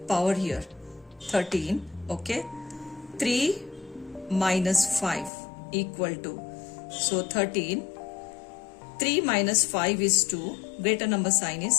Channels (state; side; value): drops out; right; at 5.3 s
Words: power here. 13, okay. 3 minus 5 equal to, so 13, 3 minus 5 is 2, greater number sign